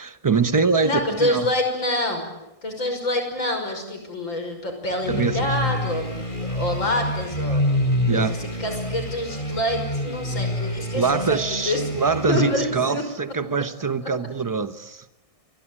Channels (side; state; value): right; late; 1.6 ms